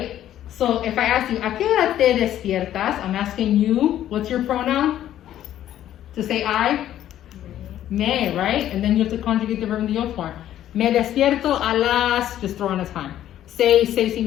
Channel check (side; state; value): right; quieter; 11.9 dB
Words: So if I ask you, ¿a qué hora te despiertas? I'm asking you, what's your pronoun? To say I? Me, right? And then you have to conjugate the verb in the yo form. Me despierto a las, just throw in a time.